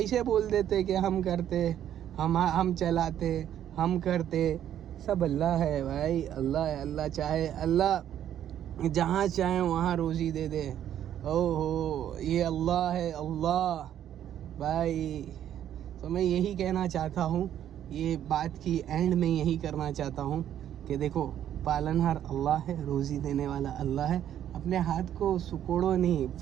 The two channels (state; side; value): quieter; left; 10.7 dB